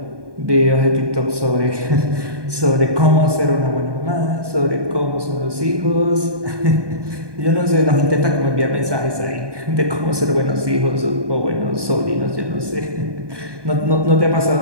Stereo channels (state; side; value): late; left; 1.2 ms